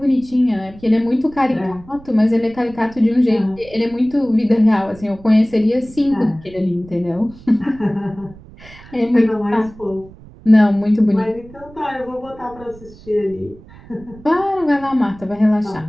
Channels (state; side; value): noise; right; rumble, 21 dB below the sound